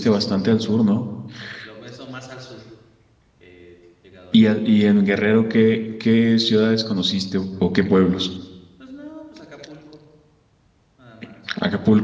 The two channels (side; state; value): both; identical; correlation 1.00